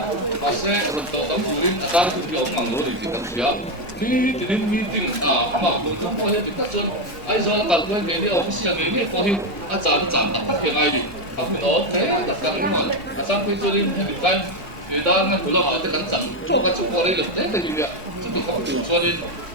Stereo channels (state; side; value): normal; both; correlation 0.08